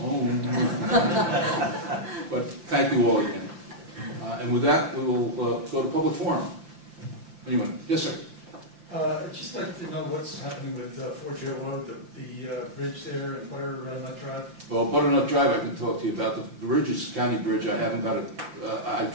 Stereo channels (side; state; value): left; late; 5.8 ms